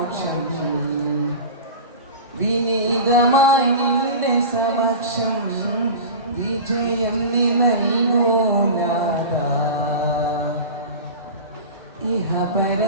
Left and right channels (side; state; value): both; inverted; correlation -0.31